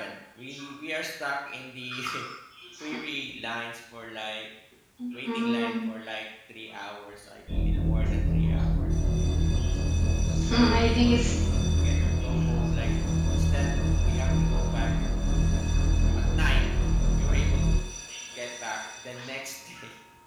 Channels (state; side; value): identical; both; correlation 1.00